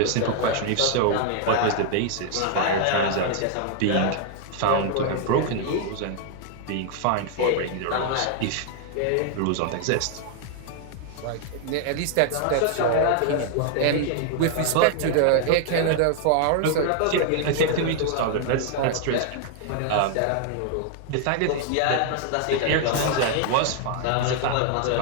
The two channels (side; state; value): both; different; correlation 0.00